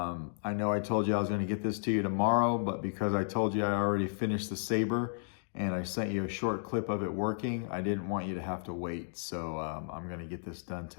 know I told you I was going to get this to you tomorrow, but because I told you I already finished the Saber and I sent you a short clip of it working, I didn't want you to have to wait. So I'm going to get this done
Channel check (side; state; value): right; silent; digital silence